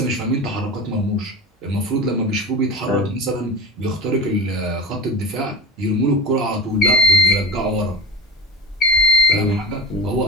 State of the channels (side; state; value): both; normal; correlation 0.33